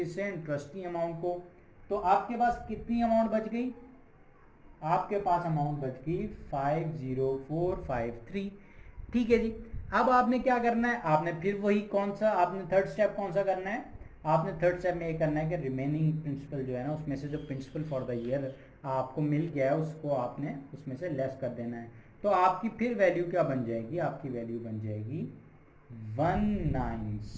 इंटरेस्ट की अमाउंट को। तो आपके पास कितनी अमाउंट बच गई, आपके पास अमाउंट बच गई 50453। ठीक है जी। अब आपने क्या करना है, आपने फिर वही कौन सा, आपने थर्ड स्टेप कौन सा करना है, आपने थर्ड स्टेप में ये करना है कि रिमेनिंग प्रिंसिपल जो है ना, उसमें से जो प्रिंसिपल फॉर द ईयर आपको मिल गया है उसको आपने उसमें से लेस कर देना है। तो आपकी फिर वैल्यू क्या बन जाएगी, आपकी वैल्यू बन जाएगी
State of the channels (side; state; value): both; identical; correlation 1.00